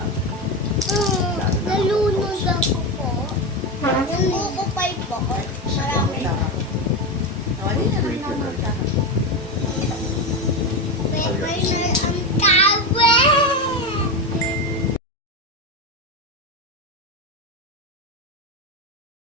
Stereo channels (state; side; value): normal; both; correlation 0.16